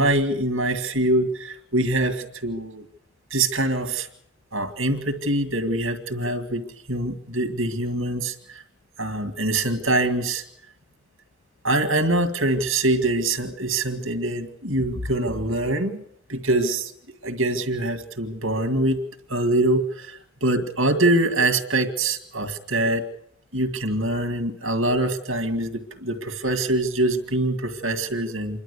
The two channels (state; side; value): normal; both; correlation 0.21